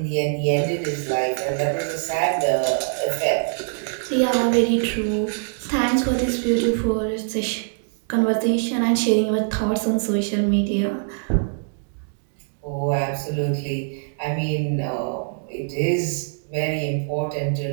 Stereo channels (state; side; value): silent; left; digital silence